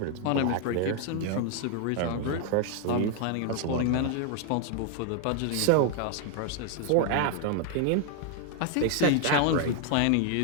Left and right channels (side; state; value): both; different; correlation 0.00